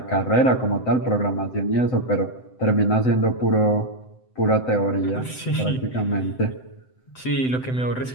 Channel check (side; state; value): right; late; 7.8 ms